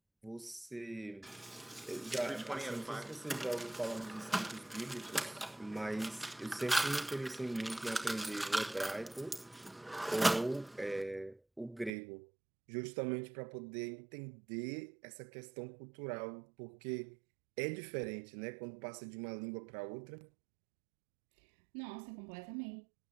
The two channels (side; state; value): left; drops out; at 11.9 s